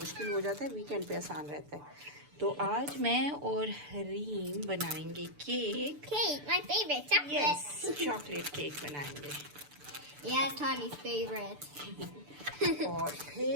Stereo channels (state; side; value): late; left; 6.8 ms